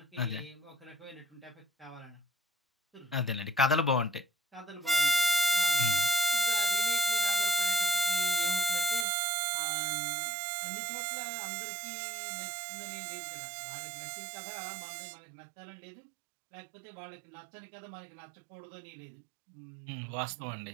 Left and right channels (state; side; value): drops out; left; at 9.1 s